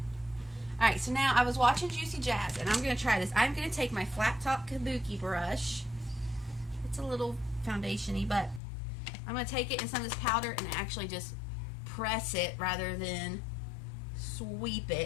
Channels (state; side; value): drops out; right; at 8.6 s